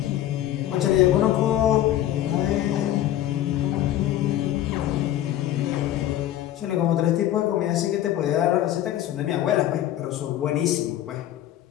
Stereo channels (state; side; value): quieter; right; 12.6 dB